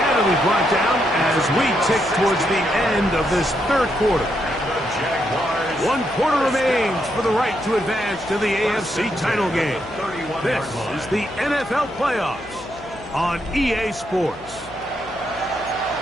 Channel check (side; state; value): left; noise; hum, 20 dB below the sound